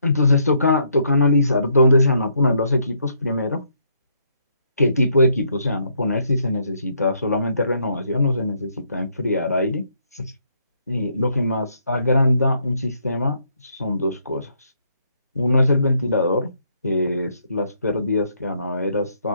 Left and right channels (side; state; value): both; inverted; correlation -0.71